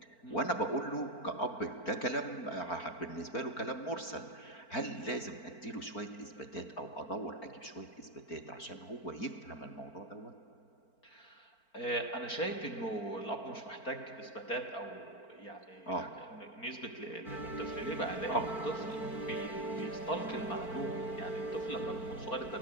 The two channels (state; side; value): late; right; 4.4 ms